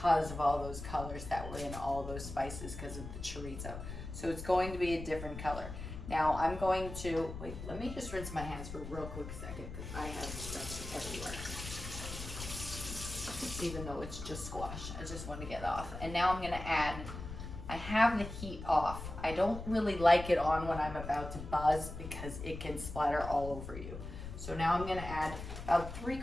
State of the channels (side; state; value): left; noise; rumble, 9 dB below the sound